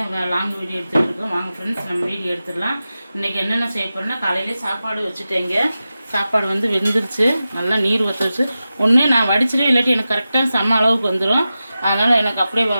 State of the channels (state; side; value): inverted; both; correlation -0.93